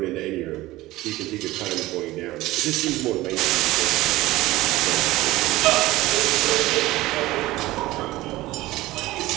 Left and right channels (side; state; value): left; quieter; 17.8 dB